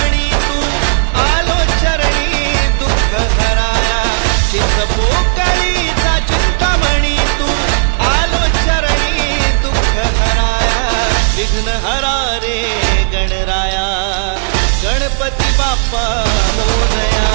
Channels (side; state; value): left; silent; digital silence